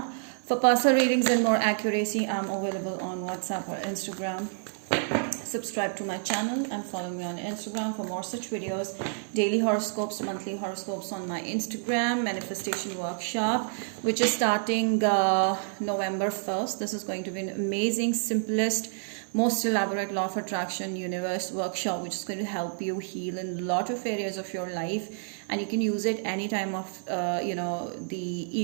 For personal readings and more accuracy, I'm available on WhatsApp or Instagram. Subscribe to my channel and follow me on Instagram for more such videos. Daily horoscopes, monthly horoscopes on my Instagram. Manifestation workshop, which is starting November 1st. This is going to be an amazing, simplest, most elaborate law of attraction universe workshop, which is going to help you heal in a lot of areas of your life, and you can use it any time of the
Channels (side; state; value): left; silent; 57 dB below the other